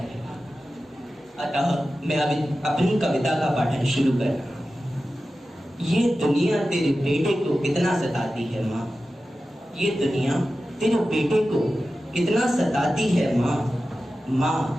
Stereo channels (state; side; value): normal; both; correlation 0.94